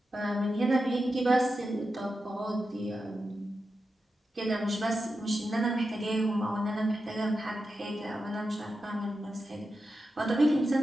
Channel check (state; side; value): normal; both; correlation 0.90